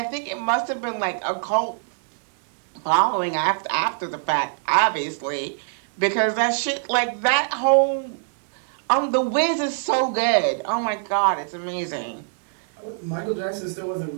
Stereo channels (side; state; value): left; silent; digital silence